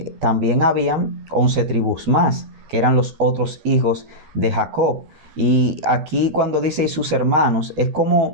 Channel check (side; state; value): left; late; 13 ms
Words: también habían 11 tribus más, que eran los otros hijos de Jacob. Y aquí cuando dice y sus hermanos, es